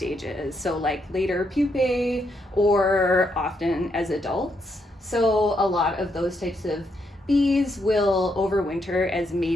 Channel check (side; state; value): both; normal; correlation 0.78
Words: so like later pupae or often as adults. So a lot of those types of bees will overwinter as